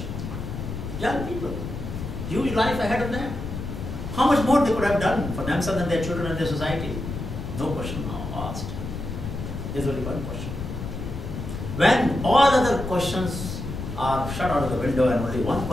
Young people, huge life ahead of them. How much more they could have done for themselves and their children and their society? No question now asked. There's only one question. When all other questions are shut out of the window and only one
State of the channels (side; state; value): left; noise; rumble, 6 dB below the sound